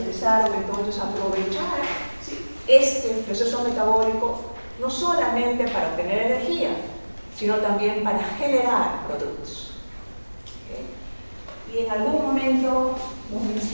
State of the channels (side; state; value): both; inverted; correlation -1.00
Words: entonces a aprovechar, ¿sí?, este proceso metabólico no solamente para obtener energía, sino también para generar productos. ¿Okay? Y en algún momento lo